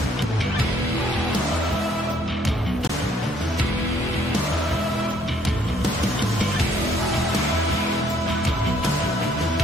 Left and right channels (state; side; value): normal; both; correlation 0.65